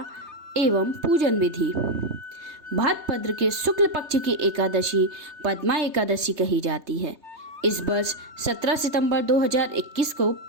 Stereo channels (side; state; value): left; late; 3.2 ms